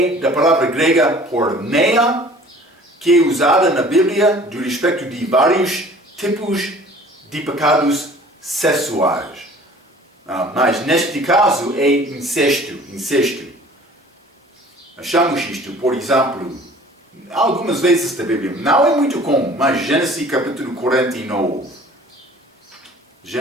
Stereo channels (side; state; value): both; normal; correlation 0.49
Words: da palavra grega porneia, que é usada na Bíblia do respeito de vários tipos de pecados sexuais. Mas neste caso é incesto. Achamos isto, por exemplo, algumas vezes da Bíblia. Não é muito comum, mas Gênesis capítulo 49.